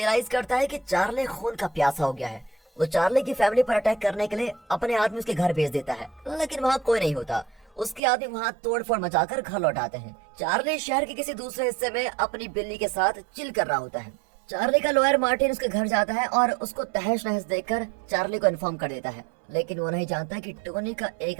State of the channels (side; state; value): left; drops out; at 8.0 s